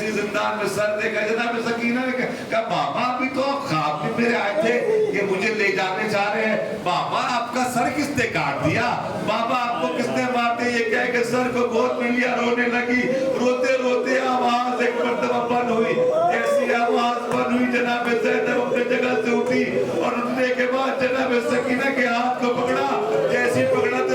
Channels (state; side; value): identical; both; correlation 1.00